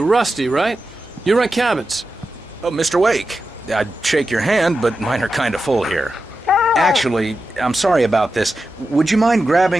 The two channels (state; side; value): normal; both; correlation 0.91